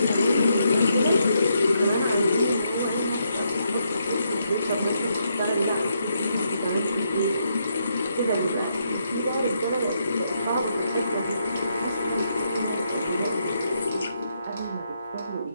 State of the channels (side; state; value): both; inverted; correlation -0.78